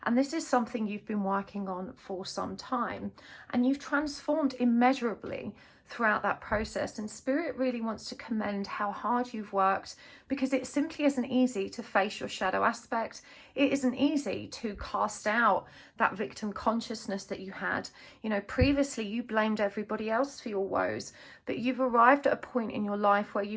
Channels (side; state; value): both; identical; correlation 1.00